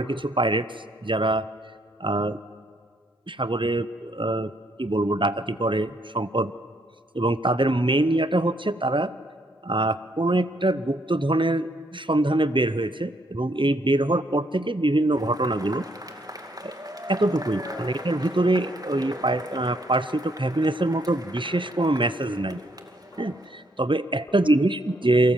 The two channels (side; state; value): both; normal; correlation 0.71